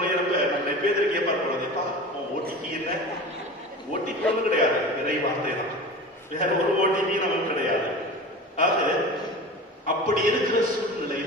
நம்ம பேருக்கு கேட்பார் போலப்பா, ஓடிபி என்ன? ஓடிபி ஒன்றும் கிடையாது, இறை வார்த்தை தான், வேற ஒரு ஓடிபி நமக்கு கிடையாது. ஆக அப்படி இருக்கிற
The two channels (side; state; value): both; normal; correlation 0.33